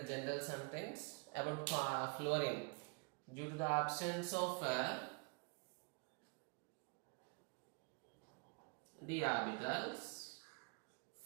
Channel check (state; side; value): quieter; left; 33.2 dB